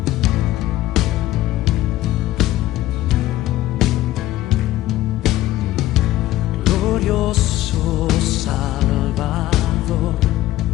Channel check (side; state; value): right; quieter; 15.0 dB